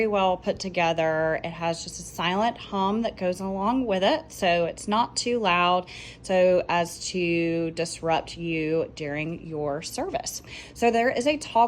well put together. It has just a silent hum that goes along with it, so it's not too loud so as to disrupt you during your service. So there is a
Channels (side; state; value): both; identical; correlation 1.00